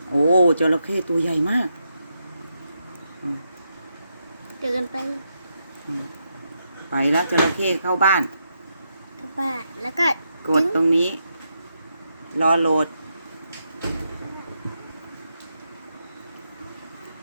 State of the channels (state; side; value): inverted; both; correlation -0.83